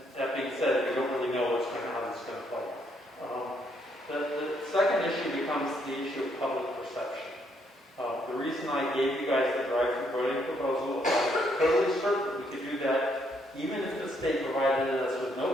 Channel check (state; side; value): normal; both; correlation 0.72